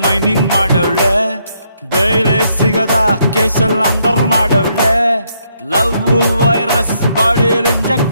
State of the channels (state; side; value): inverted; both; correlation -0.74